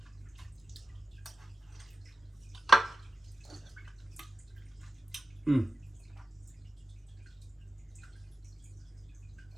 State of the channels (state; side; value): normal; both; correlation 0.91